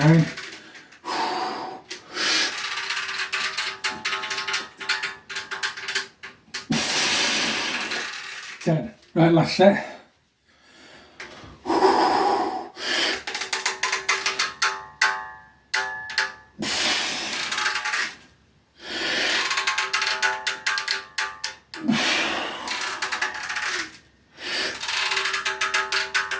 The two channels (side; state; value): both; identical; correlation 1.00